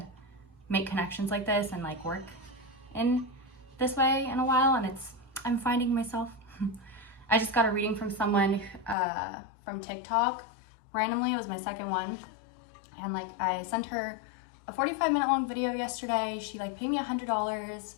make connections like this and like work in this way in a while, and I'm finding myself. I just got a reading from someone from TikTok randomly. It was my second one, and like I sent her a 45-minute long video yesterday. She like paid me $100.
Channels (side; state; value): right; drops out; at 9.0 s